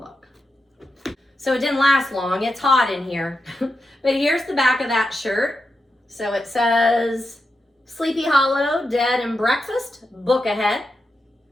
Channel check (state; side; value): normal; both; correlation 0.88